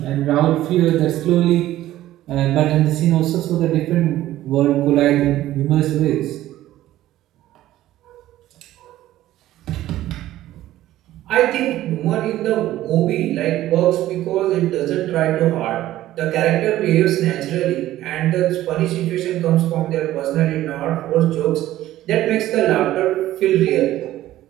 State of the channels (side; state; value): left; quieter; 14.4 dB